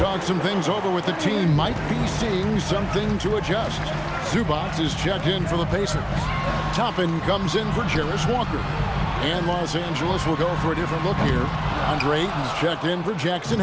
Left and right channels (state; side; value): identical; both; correlation 1.00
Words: some things over with the team. Might be seeing something to adjust. Zubac is checked in for the Pacers. Toppin comes in for Jarris Walker. And Los Angeles will go for a different look here. Andre Ayton's checked in for Jackson